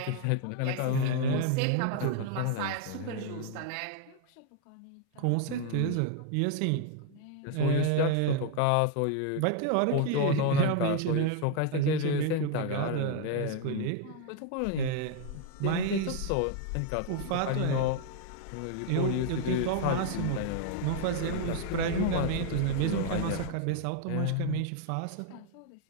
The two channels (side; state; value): both; different; correlation 0.00